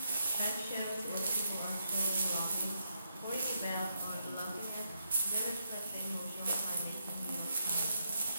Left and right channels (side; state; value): both; inverted; correlation -0.81